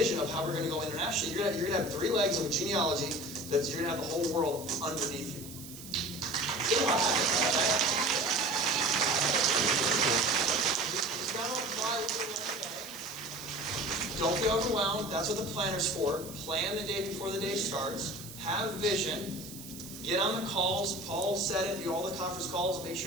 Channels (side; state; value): right; noise; hiss, 14 dB below the sound